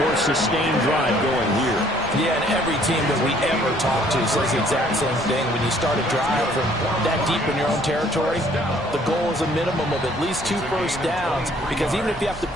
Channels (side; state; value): left; noise; rumble, 18 dB below the sound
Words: sustained drive going here. Yeah, and every team that we ever talk to says the exact same thing. When you start a drive from that deep in your own territory, the goal is a minimum of at least 2 first downs, because even if you have to